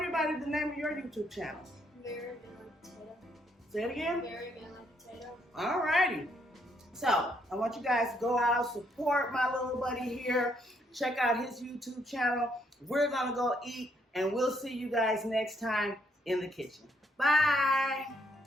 the name of your YouTube channel. Very good potato. Say it again. Very good potato. Alrighty. So I want you guys to go out, support my little buddy here. Check out his YouTube channel. We're gonna go eat, and we'll see you guys next time in the kitchen. Bye.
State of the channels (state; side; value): normal; both; correlation 0.72